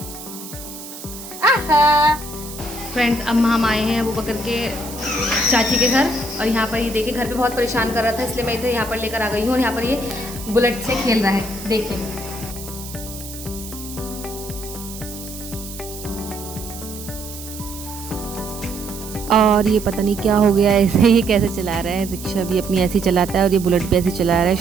आहा फ्रेंड्स, अब हम आए हैं अबू बकर के चाची के घर और यहाँ पर ये देखिए घर पे बहुत परेशान कर रहा था, इसलिए मैं इधर यहाँ पर लेकर आ गई हूँ और यहाँ पर ये बुलेट से खेल रहा है, देखिए। और ये पता नहीं क्या हो गया, ऐसे ही कैसे चला रहा है। रिक्शा भी अपनी ऐसी चलाता है और ये बुलेट भी ऐसे चला रहा है।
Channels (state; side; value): noise; right; hiss, 13 dB below the sound